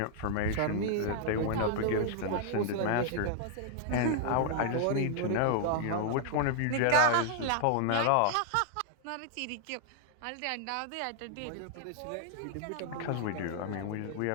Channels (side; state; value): both; different; correlation -0.01